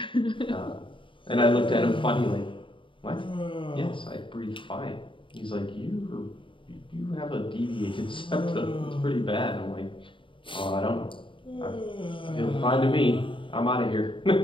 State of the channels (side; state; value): right; late; 0.25 ms